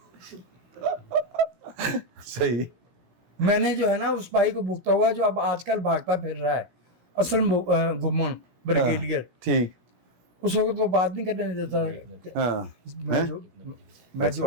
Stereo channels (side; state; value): left; late; 17 ms